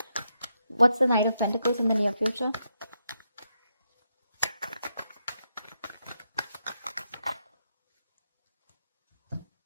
What's the Knight of Pentacles in the near future?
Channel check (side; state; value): both; inverted; correlation -0.82